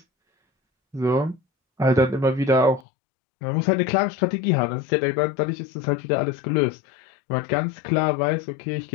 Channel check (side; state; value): right; drops out; at 2.9 s